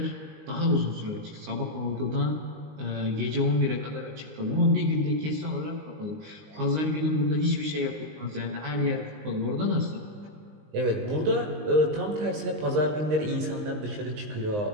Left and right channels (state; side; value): late; left; 19 ms